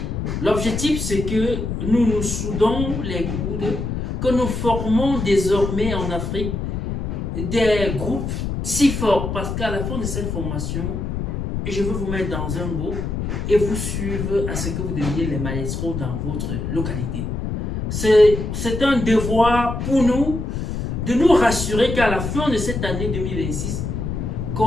l'objectif c'est que nous nous soudons les coudes, que nous formons désormais en Afrique des groupes si forts parce qu'à la fin de cette formation, je veux vous mettre dans un groupe et vous suivre à ce que vous deveniez les maestros dans votre localité. C'est un devoir pour nous de nous rassurer qu'à la fin de cette année 2026,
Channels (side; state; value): left; noise; rumble, 3 dB below the sound